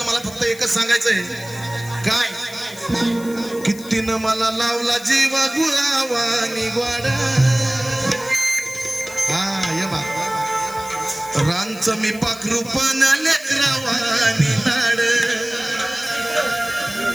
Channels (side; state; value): left; noise; hiss, 17 dB below the sound